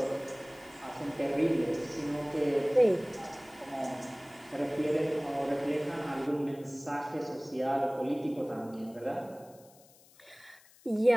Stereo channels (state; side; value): noise; left; hiss, 26 dB below the sound